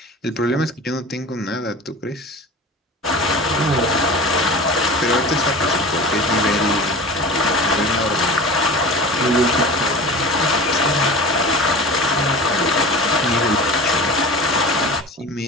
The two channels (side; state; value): both; normal; correlation 0.35